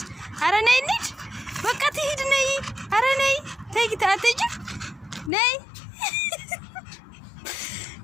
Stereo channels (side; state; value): right; drops out; at 5.3 s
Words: አረ ነይ እንሂድ በቃ ትሂድ ነይ አረ ነይ ተይ አትሄጂ ነይ